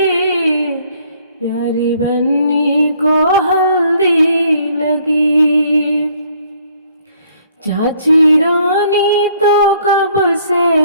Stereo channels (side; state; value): both; inverted; correlation -0.63